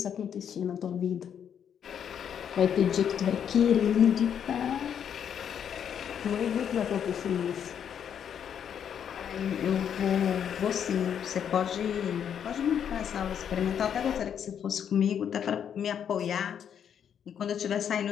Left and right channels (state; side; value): quieter; right; 8.5 dB